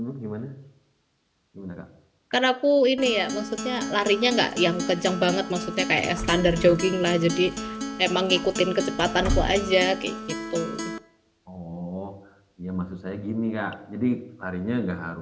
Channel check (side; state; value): both; identical; correlation 1.00